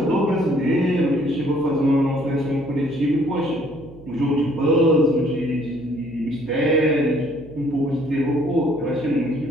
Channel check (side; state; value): right; noise; hum, 20 dB below the sound